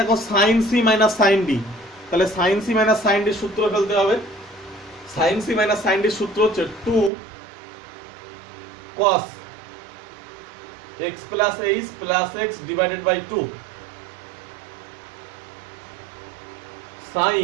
sin c minus sin d, তাহলে sin c minus sin d এর সূত্র ফেলতে হবে। sin c minus sin d এর সূত্র হচ্ছে 2 cos x plus h plus x divided by 2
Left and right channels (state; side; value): drops out; left; at 7.1 s